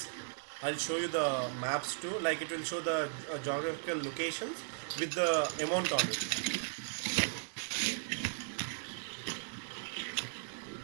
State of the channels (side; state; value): left; silent; digital silence